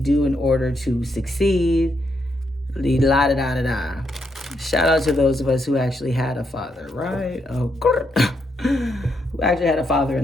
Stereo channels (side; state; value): both; normal; correlation 0.79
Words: in order to succeed. La da da da da. Shout out to those of us who actually had a father, right? Oh, who actually had a father